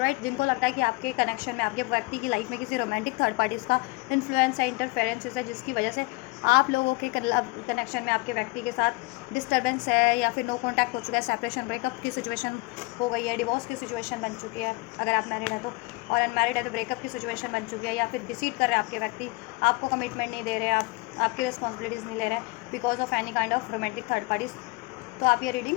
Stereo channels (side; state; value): right; quieter; 24.8 dB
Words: जिनको लगता है कि आपके कनेक्शन में, आपके व्यक्ति की लाइफ में किसी रोमांटिक थर्ड पार्टीज़ का इन्फ्लुएंस है, इंटरफेरेंसेस है, जिसकी वजह से आप लोगों के कनेक्शन में आपके व्यक्ति के साथ डिस्टर्बेंस है या फिर नो कॉन्टैक्ट हो चुका है, सेपरेशन, ब्रेकअप की सिचुएशन हो गई है, डिवोर्स की सिचुएशन बन चुकी है अगर आप मैरिड हैं तो, और अनमैरिड है तो ब्रेकअप की सिचुएशन बन चुकी है, या फिर डिसीट कर रहे हैं आपके व्यक्ति, आपको कमिटमेंट नहीं दे रहे, आपकी रिस्पॉन्सिबिलिटीज़ नहीं ले रहे हैं because of any kind of romantic third parties. तो आप ये रीडिंग,